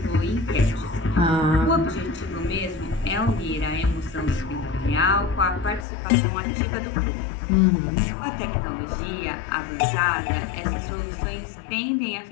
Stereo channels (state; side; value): drops out; right; at 5.9 s